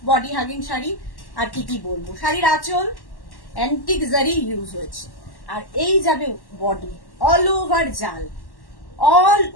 body hugging sari. আর কি কি বলবো, শাড়ির আঁচল অ্যান্টিক জারি ইউজ হয়েছে, আর এই যাবে বডি, অল ওভার জাল, অল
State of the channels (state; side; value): late; right; 1.1 ms